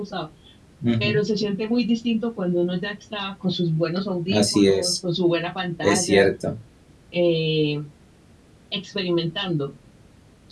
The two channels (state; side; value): identical; both; correlation 1.00